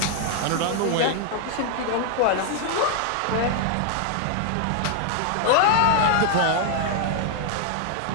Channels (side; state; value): both; different; correlation 0.00